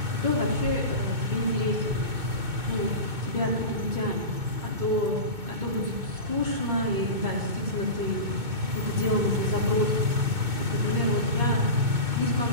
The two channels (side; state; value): left; late; 2.2 ms